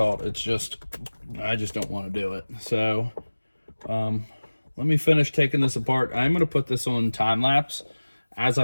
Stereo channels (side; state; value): both; inverted; correlation -1.00